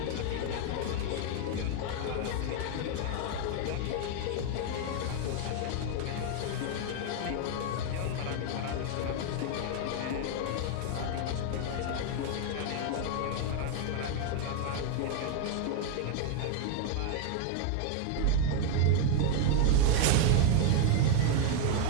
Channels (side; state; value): both; different; correlation 0.00